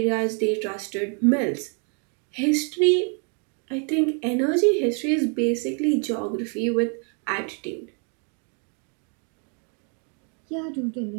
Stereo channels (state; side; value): quieter; left; 39.7 dB